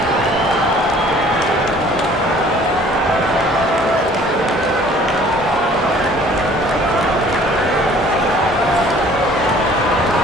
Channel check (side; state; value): both; normal; correlation 0.53